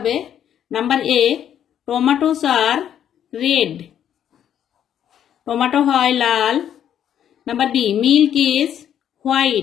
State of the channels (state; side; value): quieter; right; 9.8 dB